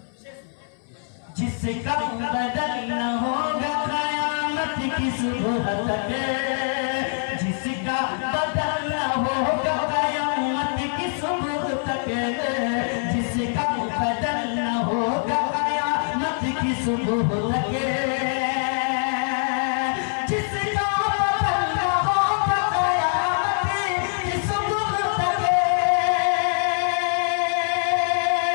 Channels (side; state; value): right; silent; 63 dB below the other